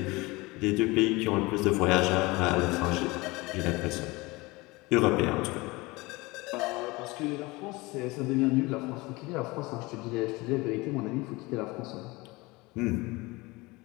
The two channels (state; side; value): quieter; right; 23.0 dB